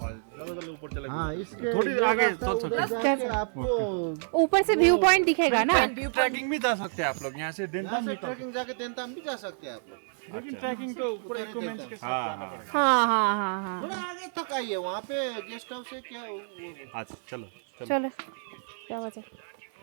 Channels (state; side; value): silent; left; 57 dB below the other